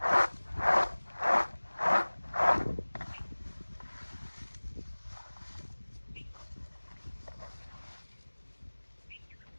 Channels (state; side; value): inverted; both; correlation -1.00